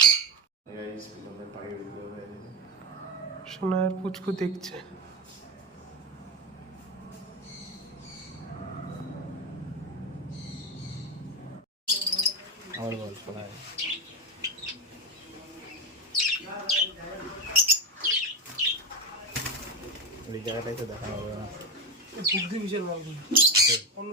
সোনার পুচকু দেখছে। আমার বল শোনায় ওই জায়গাটাই তো দেখা হবে না। বুদ্ধি বিশাল মালগুলো, অন্য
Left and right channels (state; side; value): normal; both; correlation 0.15